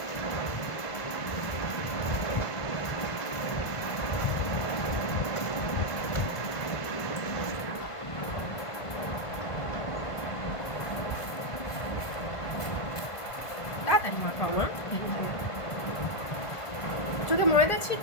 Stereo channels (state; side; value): late; right; 1.5 ms